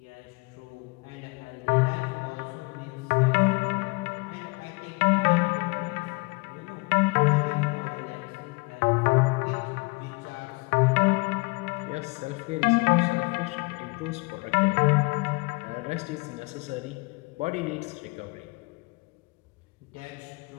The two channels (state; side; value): quieter; right; 27.2 dB